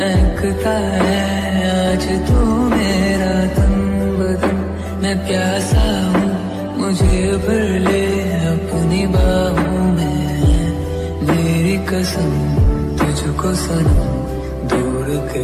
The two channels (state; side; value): identical; both; correlation 1.00